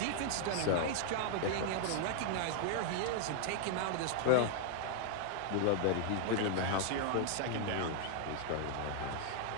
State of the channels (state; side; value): different; both; correlation 0.00